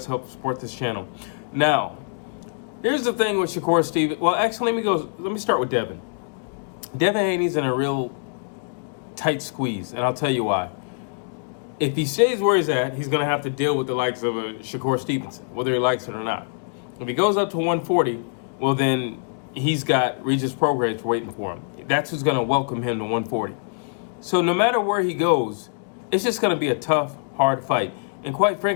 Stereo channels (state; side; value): silent; right; digital silence